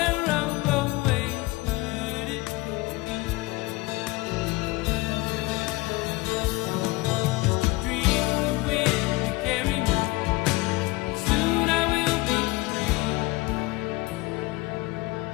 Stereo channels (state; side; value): quieter; right; 21.6 dB